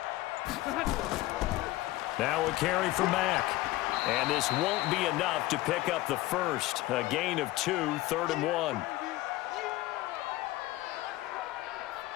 Now a carry for Mack. And this won't be enough to pick up the first. A gain of 2, 3rd and 1.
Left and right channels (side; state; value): right; quieter; 17.6 dB